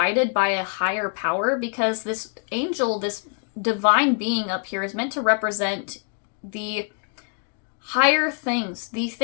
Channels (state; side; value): quieter; right; 39.2 dB